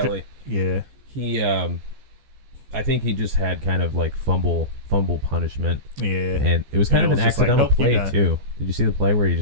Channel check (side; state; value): left; late; 14 ms